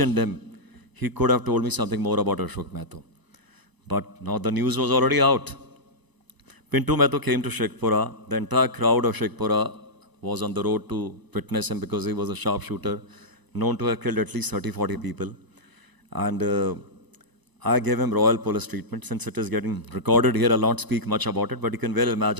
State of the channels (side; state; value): left; late; 1.0 ms